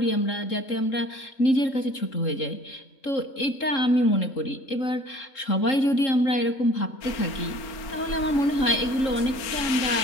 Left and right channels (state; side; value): late; right; 3.7 ms